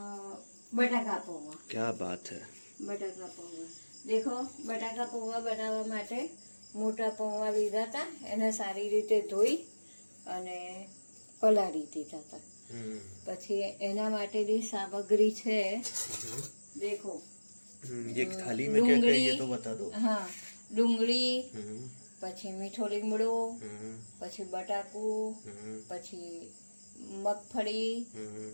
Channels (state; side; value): inverted; both; correlation -1.00